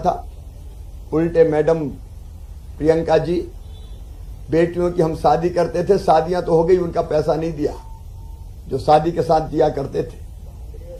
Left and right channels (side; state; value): both; identical; correlation 1.00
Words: उल्टे मैडम प्रियंका जी, बेटियों की हम शादी करते थे, शादियां तो हो गई, उनका पैसा नहीं दिया जो शादी के साथ दिया करते थे।